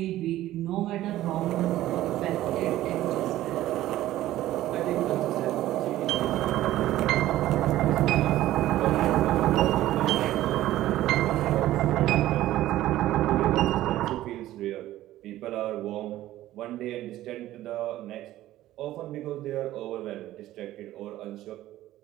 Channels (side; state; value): left; quieter; 14.6 dB